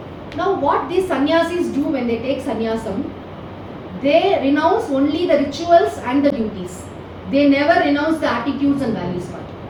Now what these sannyasis do when they take sannyasam, they renounce only the rituals and the duties. They never renounce the attitudes and values part.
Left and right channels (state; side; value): identical; both; correlation 1.00